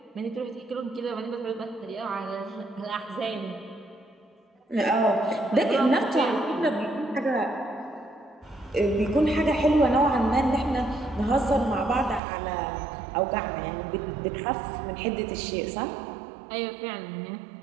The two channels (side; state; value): left; drops out; at 12.2 s